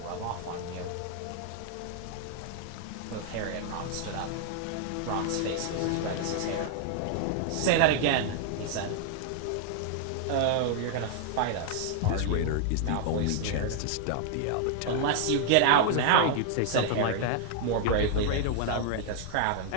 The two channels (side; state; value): both; different; correlation 0.00